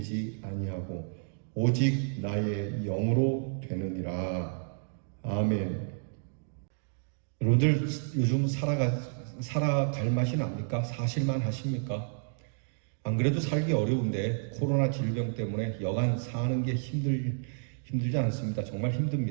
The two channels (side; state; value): left; silent; digital silence